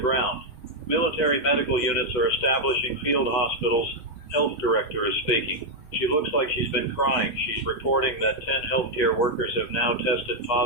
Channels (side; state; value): right; late; 8.3 ms